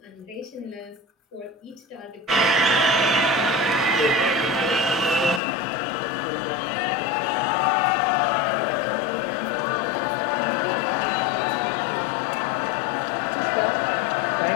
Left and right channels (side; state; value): right; drops out; at 5.4 s